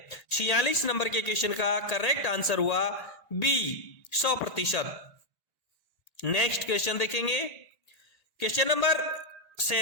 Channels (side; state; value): right; late; 1.8 ms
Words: 46 नंबर के क्वेश्चन का करेक्ट आंसर हुआ बी, 100%। नेक्स्ट क्वेश्चन देखेंगे। क्वेश्चन नंबर